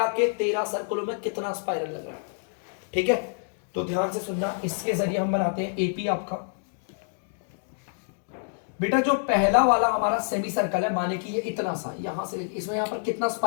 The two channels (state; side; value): silent; right; digital silence